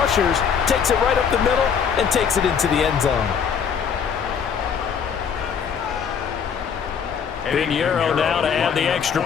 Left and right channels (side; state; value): right; quieter; 7.1 dB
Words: takes it right up the middle, and takes it into the end zone. Pinheiro now to add the extra